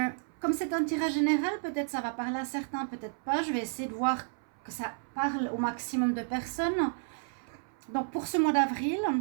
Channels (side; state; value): left; silent; 57 dB below the other